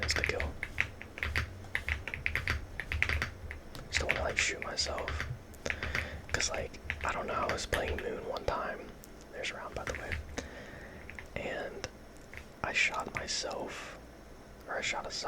insta kill. Just don't want to like shoot myself. Cause like, I don't know, I was playing Moon one time. There's a round by the way. And I shot myself, or I shot a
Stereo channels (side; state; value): both; identical; correlation 1.00